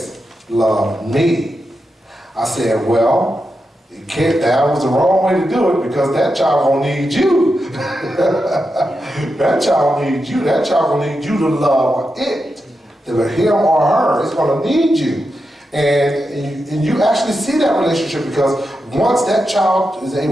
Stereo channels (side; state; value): both; normal; correlation 0.88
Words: love me. I said, well, that was the wrong way to do it because that child gonna need you. That child needs you. That child gonna need you to love it. Him or her is gonna need you. And you actually see that relationship because once that child is